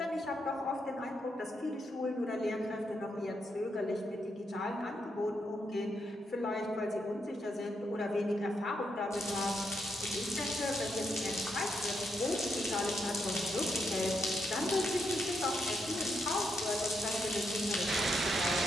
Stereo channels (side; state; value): both; normal; correlation 0.80